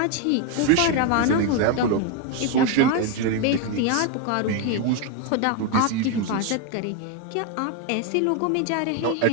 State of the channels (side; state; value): both; different; correlation 0.02